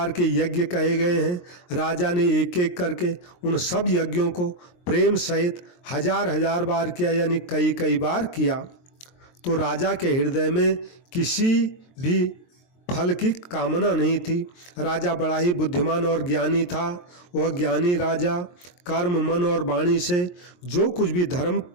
के यज्ञ कहे गए हैं राजा ने एक एक करके उन सब यज्ञों को प्रेम सहित हजार हजार बार किया, यानी कई कई बार किया। तो राजा के हृदय में किसी भी फल की कामना नहीं थी। राजा बड़ा ही बुद्धिमान और ज्ञानी था। वह ज्ञानी राजा कर्म, मन और वाणी से जो कुछ भी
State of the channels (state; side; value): late; right; 23 ms